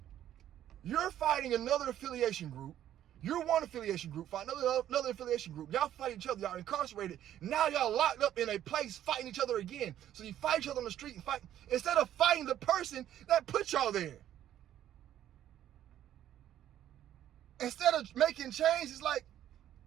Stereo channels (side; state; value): left; quieter; 11.5 dB